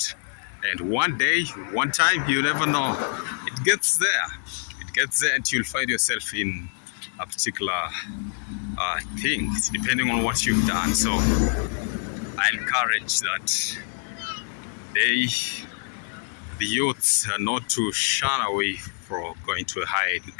And one day, one time, you never know. It gets there. It gets there, and you'll find yourself in a particular thing, depending on what you've done. So I encourage that the youths are not to shun away from going to a higher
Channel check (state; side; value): silent; right; 61 dB below the other